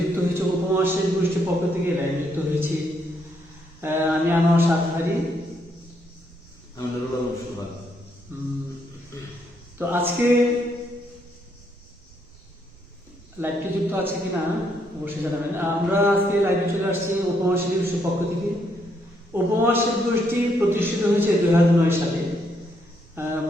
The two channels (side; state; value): right; noise; rumble, 25 dB below the sound